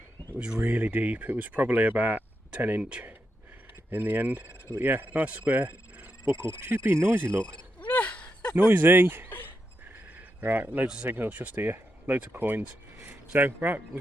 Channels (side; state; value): both; normal; correlation 0.85